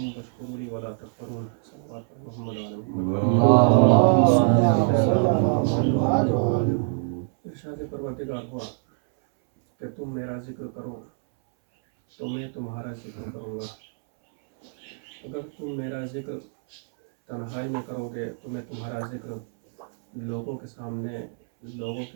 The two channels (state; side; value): silent; left; 61 dB below the other